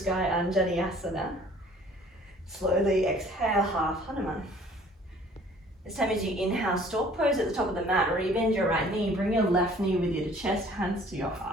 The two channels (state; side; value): normal; both; correlation 0.53